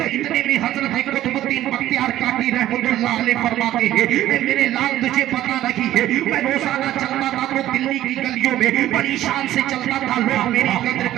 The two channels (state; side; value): quieter; left; 13.5 dB